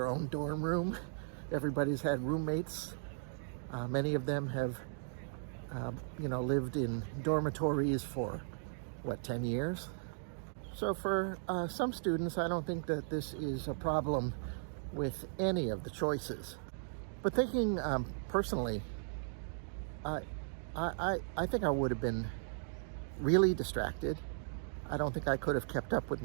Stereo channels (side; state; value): left; silent; digital silence